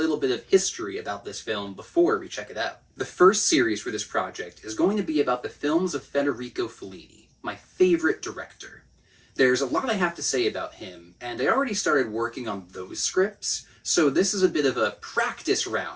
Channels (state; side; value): identical; both; correlation 1.00